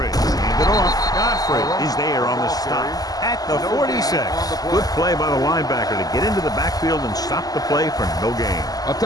Hand it off. Godfrey is there on the stop at the 46. Good play by the linebacker to get into the backfield and stop the play for no gain. I'll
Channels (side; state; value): right; late; 0.18 ms